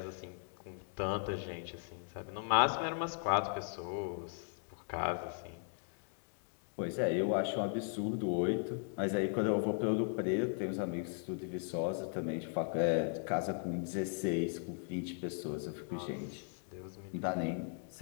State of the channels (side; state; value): right; silent; 53 dB below the other